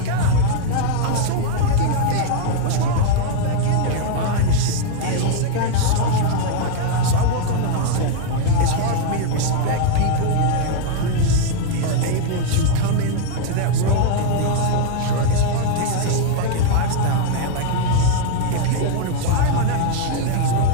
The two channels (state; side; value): different; both; correlation 0.00